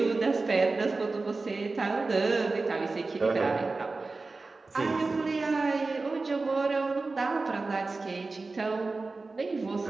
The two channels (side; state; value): left; quieter; 3.7 dB